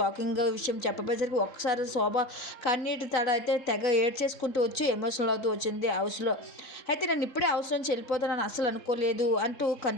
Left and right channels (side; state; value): right; late; 3.7 ms